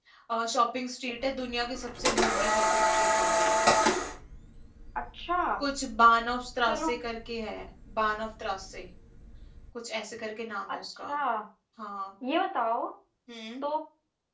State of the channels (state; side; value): identical; both; correlation 1.00